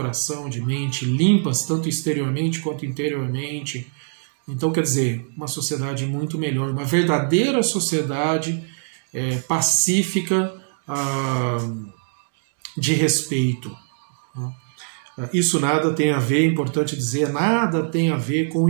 de mente, limpas, tanto exteriormente quanto interiormente. Então, quer dizer, uma sociedade muito melhor, uma verdadeira sociedade pacífica, de respeito. Isso nada tem a ver, é importante dizer, nada tem a ver com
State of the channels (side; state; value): left; silent; digital silence